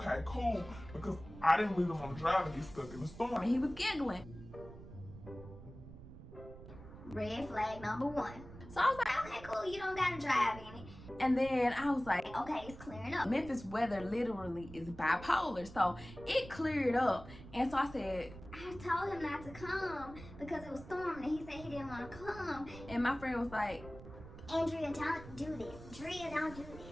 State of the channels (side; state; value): right; noise; rumble, 15 dB below the sound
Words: cool, because I didn't really want to drive and get stuck in the storm. And he was giggling. Red flag number 1. So I was like, Okay, cool, you don't gotta drive in it. and then I was like, Okay, it's clearing up. Memphis weather literally is bipolar, so it cleared up. And so I said, I told him not to come because it was storming and he said he didn't want to come. and my friend was like, Andrea, don't do this. Drea, don't do